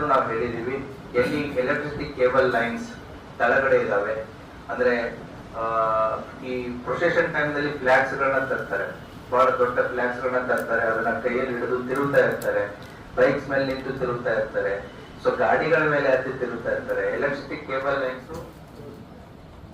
ನಾವು ಹೇಳಿದೀವಿ, ಎಲ್ಲಿ ಎಲೆಕ್ಟ್ರಿಸಿಟಿ ಕೇಬಲ್ ಲೈನ್ಸ್ ಕೆಳಗಡೆ ಇದಾವೆ ಅಂದ್ರೆ ಈ ಪ್ರೊಸೆಷನ್ ಟೈಮ್ ನಲ್ಲಿ ಫ್ಲಾಗ್ಸ್ ಗಳನ್ನ ತರ್ತಾರೆ, ಬಹಳ ದೊಡ್ಡ ಫ್ಲಾಗ್ಸ್ ಗಳನ್ನ ತರ್ತಾರೆ, ಅದನ್ನ ಕೈಯಲ್ಲಿ ಹಿಡಿದು ತಿರುಗ್ತಾ ಇರ್ತಾರೆ, ಬೈಕ್ಸ್ ಮೇಲೆ ನಿಂತು ತಿರುಗ್ತಾ ಇರ್ತಾರೆ, ಸೊ ಗಾಡಿಗಳ ಮೇಲೆ ಹತ್ತಿ ತಿರುಗ್ತಾ ಇರ್ತಾರೆ. ಎಲೆಕ್ಟ್ರಿಸಿಟಿ ಕೇಬಲ್ ಲೈನ್ಸ್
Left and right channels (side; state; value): both; identical; correlation 1.00